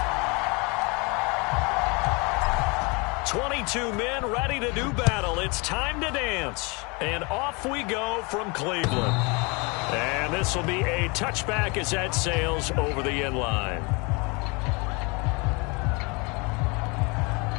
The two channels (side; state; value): right; quieter; 28.9 dB